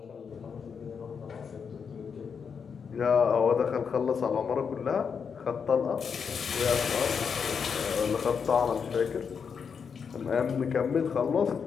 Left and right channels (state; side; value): quieter; right; 6.4 dB